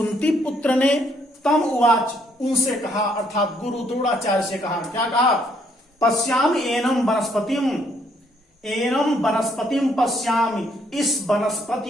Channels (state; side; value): normal; both; correlation 0.69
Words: पुत्र ने, तम उवाच, उनसे कहा, अर्थात गुरु द्रोणाचार्य से कहा। क्या कहा? पश्यामि एनं वनस्पतिम, एनं वनस्पतिम पश्यामि, इस